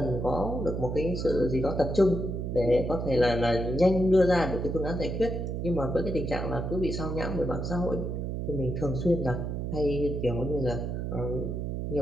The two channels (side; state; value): right; noise; hum, 3 dB below the sound